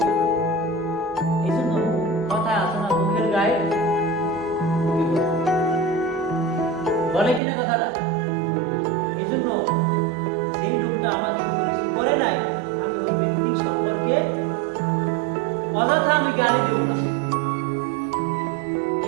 এই জন্য কথা আছে না, মুখের গায়ে বলে কিনা কথাটা? এই জন্য সেই লোকটা আমাকে কোনো কিছু করে নাই, আমি ওই ব্যক্তি সম্পর্কে অযথা আমি গালি দেব না।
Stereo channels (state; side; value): drops out; left; at 7.4 s